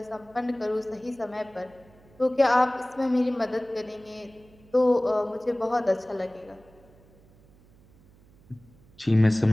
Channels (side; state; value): right; noise; hum, 27 dB below the sound